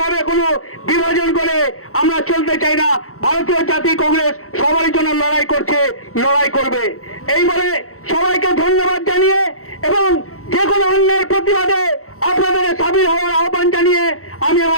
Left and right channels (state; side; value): late; right; 0.63 ms